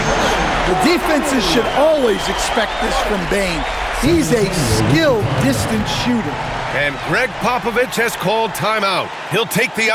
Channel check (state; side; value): identical; both; correlation 1.00